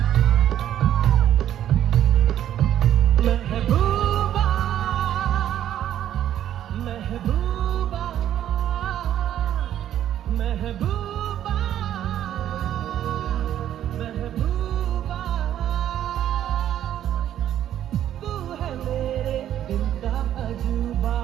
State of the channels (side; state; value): left; quieter; 11.2 dB